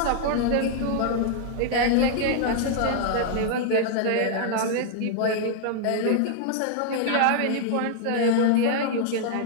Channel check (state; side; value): different; both; correlation -0.01